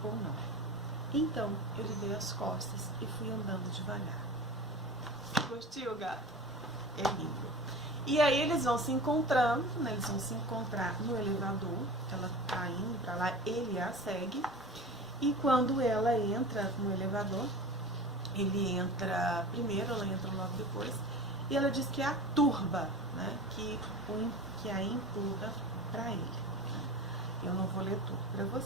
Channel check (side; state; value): both; normal; correlation 0.35